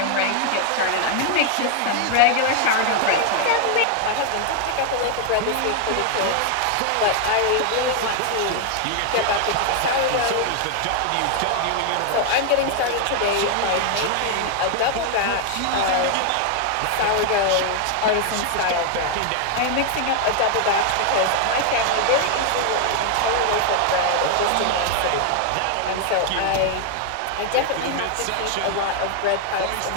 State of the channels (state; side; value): different; both; correlation 0.00